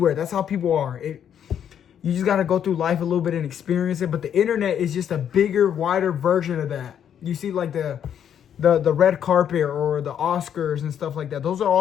That's how people are. You just got to go through life a little bit and experience it. But the internet is just a bigger, wider version of that. You see like the red carpet or the Oscars and stuff like that. Those are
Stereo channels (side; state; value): right; quieter; 9.1 dB